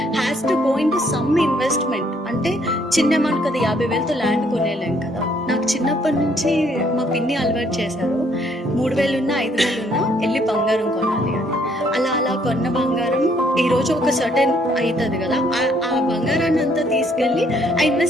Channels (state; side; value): normal; both; correlation 0.67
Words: has to go in to some investment. అంటే చిన్న అమౌంట్ కదా, 50,000తో ల్యాండ్ కొనేలేం కదా. నాకు చిన్నప్పటి నుంచి మా పిన్ని అలవాటు చేశారు, 3,000 ఉన్నా 5,000 ఉన్నా వెళ్ళి బంగారం కొనాలి అని. అలా అలా కొన్న బంగారం ఈ రోజు ఒక సర్టెన్ అవుతుంది కదా, ఆ బంగారాన్ని అంతా తీసుకెళ్ళి I